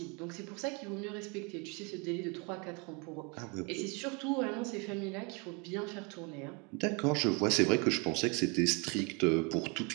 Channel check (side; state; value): left; quieter; 31.4 dB